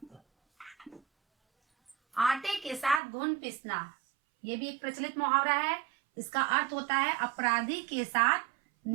आटे के साथ घुन पीसना, ये भी एक प्रचलित मुहावरा है। इसका अर्थ होता है अपराधी के साथ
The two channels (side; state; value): left; drops out; at 3.0 s